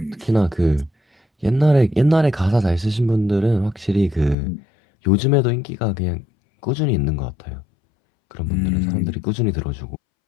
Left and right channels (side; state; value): right; drops out; at 4.4 s